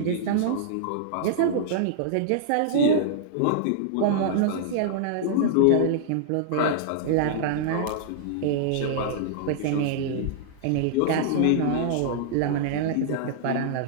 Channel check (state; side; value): different; both; correlation -0.01